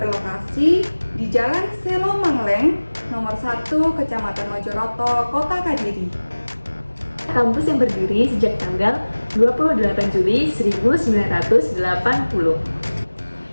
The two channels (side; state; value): both; inverted; correlation -1.00